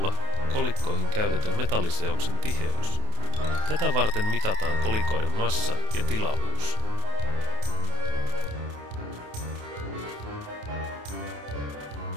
kolikkoihin käytetyn metalliseoksen tiheys. Tätä varten mitataan kolikoiden massa ja tilavuus.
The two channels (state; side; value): late; left; 28 ms